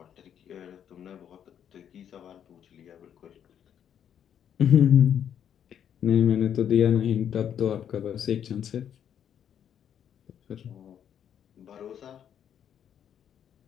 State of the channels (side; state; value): right; quieter; 9.1 dB